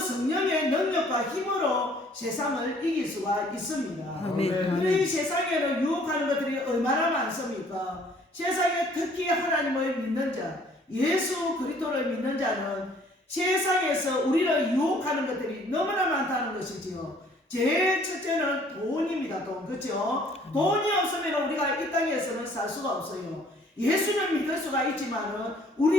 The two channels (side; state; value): both; normal; correlation 0.58